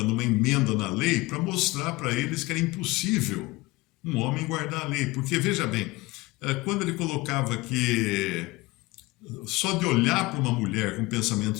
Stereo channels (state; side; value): quieter; right; 21.4 dB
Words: uma emenda na lei para mostrar para eles que era impossível um homem guardar a lei. Porque, veja bem, quando ele colocava que só de olhar para uma mulher com